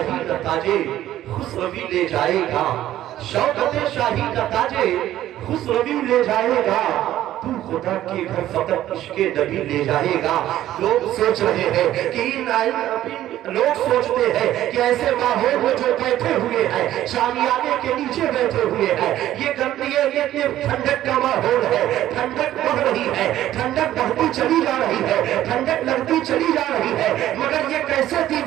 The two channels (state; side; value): quieter; left; 13.1 dB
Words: کا تاجے خسروی لے جائے گا، شوکت شاہی کا تاجے خسروی لے جائے گا، تو خدا کے گھر فقط عشق نبی لے جائے گا۔ لوگ سوچ رہے ہیں کہ لوگ سوچتے ہیں کہ ایسے ماحول میں جو بیٹھے ہوئے ہیں، شامیانے کے نیچے بیٹھے ہوئے ہیں، یہ گندگی کہ ٹھنڈک کا ماحول ہے، ٹھنڈک بڑھ رہی ہے، ٹھنڈک بڑھتی چلی جا رہی ہے، ٹھنڈک لگتی چلی جا رہی ہے، مگر یہ کیسے